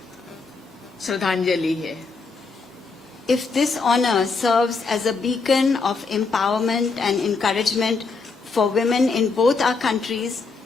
श्रद्धांजलि है। If this honor serves as a beacon of empowerment and encouragement for women in both our countries,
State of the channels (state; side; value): quieter; right; 4.4 dB